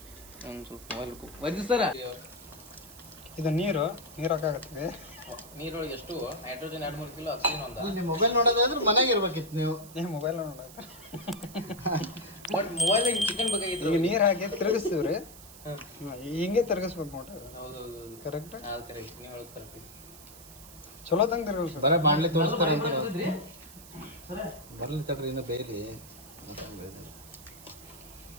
ಒಂದು ಸ್ವಲ್ಪ ಮೊಬೈಲ್ ವಜ್ಜಿ ಸರ ಇದು ನೀರು ಹಾಕಾಗತ್ತೆ. ನೀರೊಳಗೆ ಎಷ್ಟು ನೈಟ್ರೋಜನ್ 2-3 ಕಿಲೋ ಆಕ್ಸಿಜನ್ ಅಂತ. ನೀವು ಮೊಬೈಲ್ ನೋಡೋದಾದ್ರೆ ಮನೆಗೆ ಇರ್ಬೇಕಿತ್ತು ನೀವು. ಮೊಬೈಲ್ ನೋಡ ಬಟ್ ಮೊಬೈಲ್ ಚಿಕನ್ ಬೇಕಾಗಿತ್ತು. ಈಗ ನೀರು ಹಾಕಿ ತಿರುಗಿಸ್ತೀವ್ರಿ, ಹಿಂಗೆ ತಿರುಗಿಸ್ಬೇಕು ನೋಡ್ರಿ. ಹೌದೌದು ಕರೆಕ್ಟ್, ಅದು ಕರೆಕ್ಟ್. ನೀವು ಹೇಳೋದು ಕರೆಕ್ಟ್. ಚಲೋ ತಂಗ ತಿರುಗಿಸ್ಬೇಕು. ಬರೀ ಬಾಣ್ಲೆ ತೋರಿಸ್ತಾರೆ ಅಂತ ಬರ್ಲಿ ತಡ್ರಿ, ಇನ್ನು ಬೇಯ್ರಿ.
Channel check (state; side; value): noise; right; hiss, 18 dB below the sound